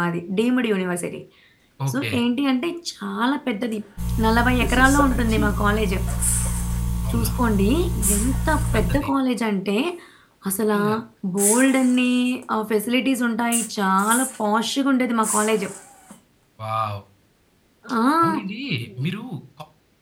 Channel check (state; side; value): identical; both; correlation 1.00